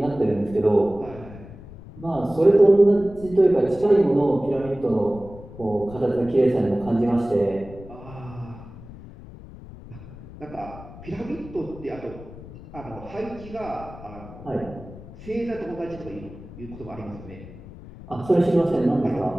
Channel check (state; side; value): noise; left; rumble, 16 dB below the sound